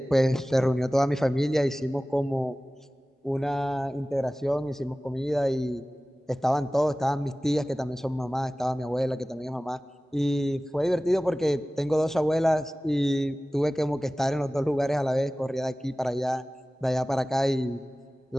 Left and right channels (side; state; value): both; normal; correlation 0.97